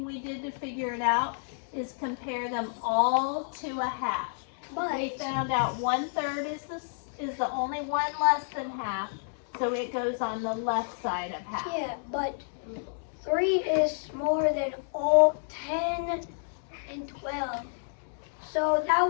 we did to figure it out is compare them all to a half. But We found out 1/3 is the only one less than half, so it goes on the left side of half. yeah, but 3 is smaller than all 10 and 12. So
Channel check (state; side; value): silent; right; digital silence